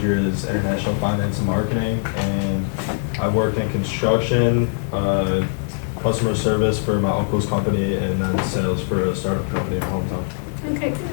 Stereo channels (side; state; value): right; silent; 60 dB below the other